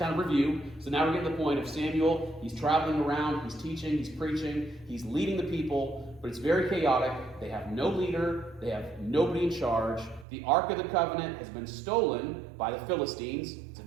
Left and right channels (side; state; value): left; drops out; at 10.2 s